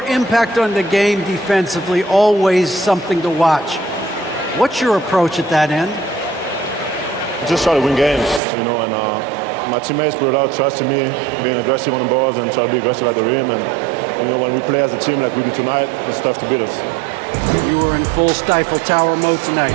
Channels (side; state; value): left; drops out; at 8.4 s